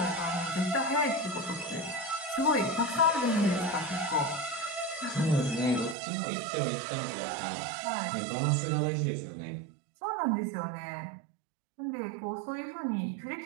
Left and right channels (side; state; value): left; drops out; at 6.0 s